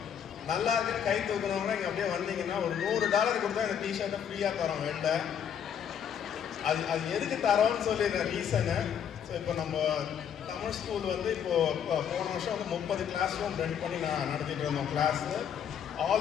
நல்லா இருக்குன்னு கை தூக்குறவங்க இங்கே அப்படியே வந்தீங்கன்னா ஒரு $100 கொடுத்தா இந்த டிஷர்ட்டை ஃப்ரீயாக தரோம் வெளில. அது எதுக்கு தரோன்னு சொல்லி ரீசனு. ஸோ இப்போ நம்ம தமிழ் ஸ்கூல் வந்து இப்போது போன வருஷம் வந்து 30 கிளாஸ் ரூம் ரெண்ட் பண்ணி நான் நடத்திட்டு இருந்தோம் class.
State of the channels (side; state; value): right; quieter; 8.4 dB